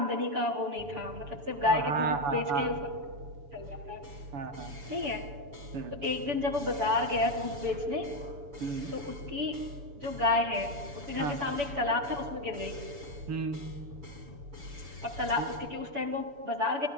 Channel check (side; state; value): left; late; 7.0 ms